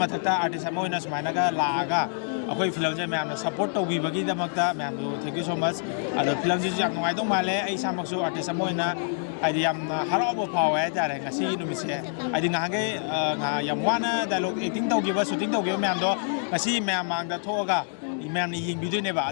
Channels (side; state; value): right; silent; 61 dB below the other